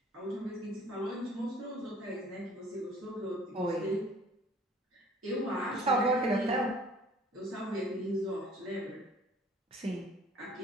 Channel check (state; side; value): normal; both; correlation 0.52